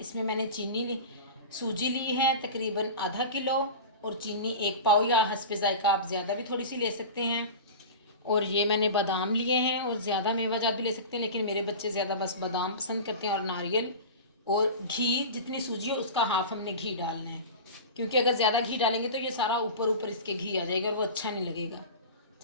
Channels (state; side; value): inverted; both; correlation -0.31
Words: मैंने सूजी ली है तकरीबन आधा किलो, और चीनी 1 पाव या हस्बे ज़ायका आप ज़्यादा भी थोड़ी सी ले सकते हैं। और ये मैंने बादाम लिए हैं, और ज़्यादा मेवाजात भी ले सकते हैं, लेकिन मेरे बच्चे ज़्यादा बस बादाम पसंद करते हैं। और नारियल और घी, जितनी सूजी है उसका हाफ हमने घी डालना है, क्योंकि अगर ज़्यादा घी डालेंगे तो ये सारा ऊपर ऊपर इसके घी आ जाएगा और वो अच्छा नहीं लगेगा।